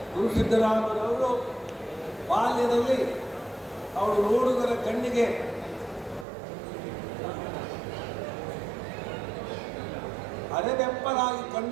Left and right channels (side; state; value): left; drops out; at 6.2 s